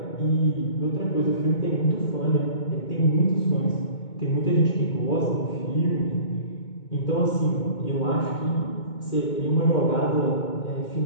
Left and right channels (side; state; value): right; late; 2.2 ms